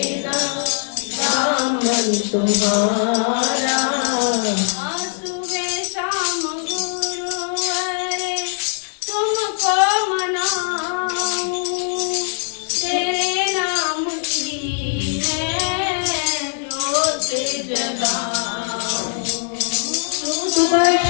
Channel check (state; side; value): silent; right; 65 dB below the other